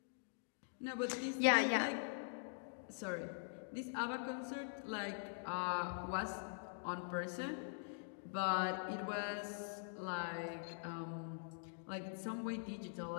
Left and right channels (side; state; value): right; silent; digital silence